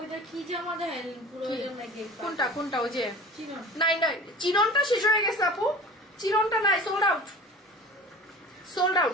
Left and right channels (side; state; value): both; normal; correlation 0.39